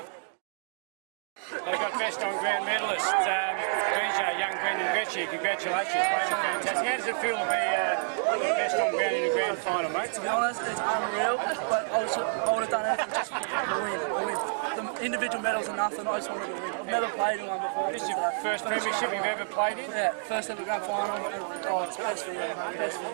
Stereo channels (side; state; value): left; silent; digital silence